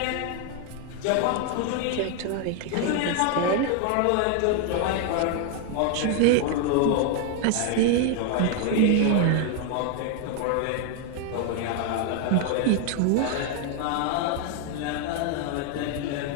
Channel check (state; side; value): different; both; correlation 0.00